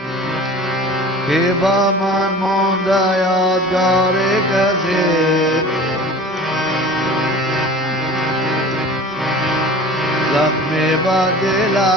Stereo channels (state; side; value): normal; both; correlation 0.41